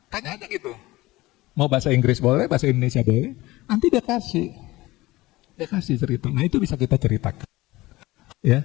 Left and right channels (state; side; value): quieter; right; 19.4 dB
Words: Tanya aja gitu. Mau bahasa Inggris boleh, bahasa Indonesia boleh, nanti dia kasih cerita. Nah itu bisa kita ceritakan.